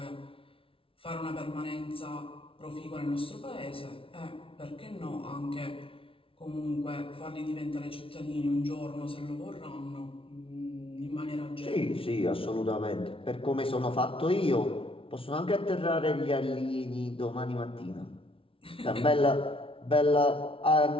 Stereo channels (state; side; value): late; right; 0.26 ms